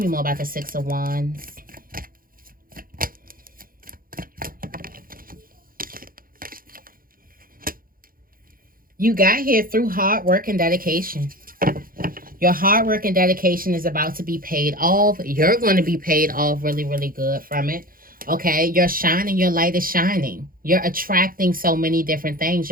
more about the Six of Wands. You got here through hard work and dedication. Your hard work and dedication is about to be paid off. You're going to be paid off really, really good from it. Okay, you're shining, your light is shining. You're attracting so many different things.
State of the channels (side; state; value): left; late; 0.41 ms